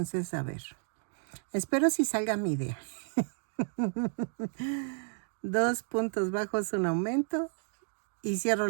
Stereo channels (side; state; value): left; silent; 56 dB below the other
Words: a ver. Espero si salga mi idea. 2 puntos bajos, un aumento y cierro